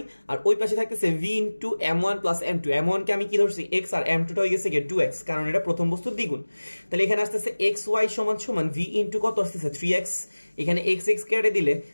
আর ওই পাশে থাকতেছে v into m1 plus m2। m1 কে আমি কি ধরছি, x, আর m2 টা হয়ে গেছে 2x, কারণ এটা প্রথম বস্তুর দ্বিগুণ। তাহলে এখানে আসতেছে xy সমান সমান v ইনটু কত আসতেছে, 3x। এখানে x কেটে দিলে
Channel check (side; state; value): both; inverted; correlation -1.00